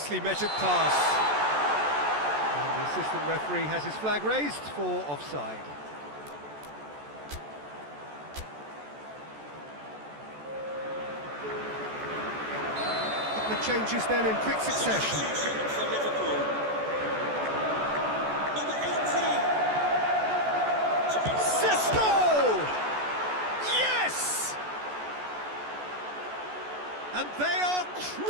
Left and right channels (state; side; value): late; left; 14 ms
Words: measured pass. And the assistant referee has his flag raised for offside. The changes then in quick succession. For Liverpool. Number 18. Cisco! Yes! And they are